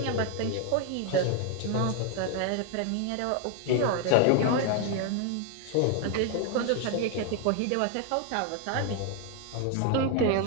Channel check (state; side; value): different; both; correlation 0.01